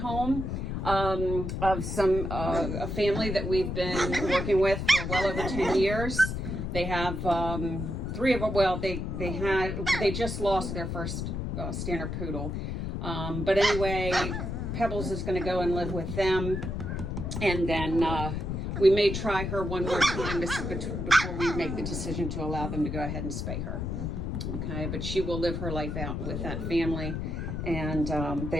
of a family that we've been working with for well over 10 years. They have 3 of them. Well, they just lost their first standard poodle. But anyway, Pebbles is going to go and live with them, and then we may try her one more time before we make the decision to allow them to go ahead and spay her. Okay, but she will live her life out with that family, and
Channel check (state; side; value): noise; left; rumble, 3 dB below the sound